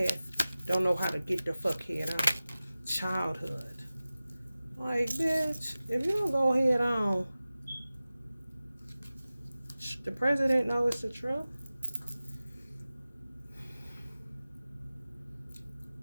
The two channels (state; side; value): inverted; both; correlation -0.96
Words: don't know how to get the fuck head on. Childhood. Like, bitch, if you don't go head on, the president knows it's the truth.